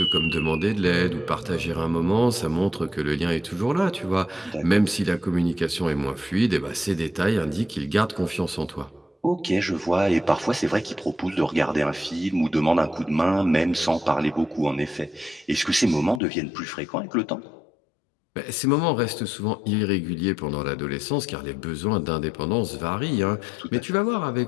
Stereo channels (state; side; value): drops out; right; at 16.2 s